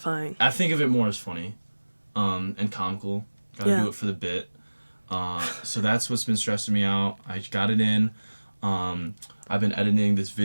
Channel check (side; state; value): both; inverted; correlation -1.00